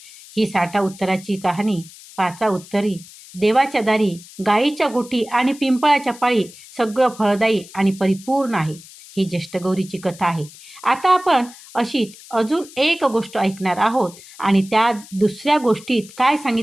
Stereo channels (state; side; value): noise; left; hiss, 19 dB below the sound